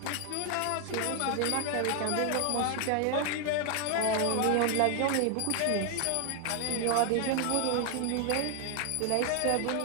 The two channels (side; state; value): both; different; correlation 0.00